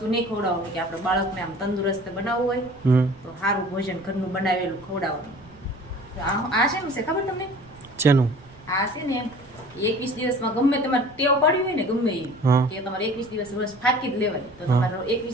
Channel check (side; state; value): right; noise; rumble, 24 dB below the sound